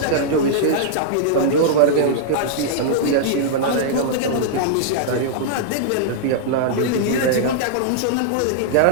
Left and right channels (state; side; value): different; both; correlation -0.02